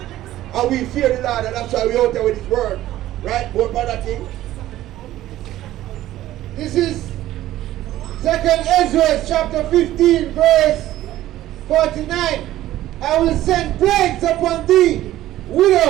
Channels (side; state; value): left; quieter; 14.3 dB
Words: And we fear the Lord, and that's why we out there with His word. Right? More brother King. This is 2nd Ezra chapter 15 verse 49. I will send plagues upon thee,